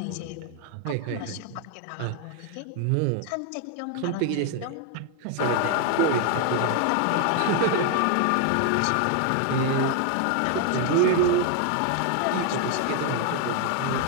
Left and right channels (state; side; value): different; both; correlation 0.01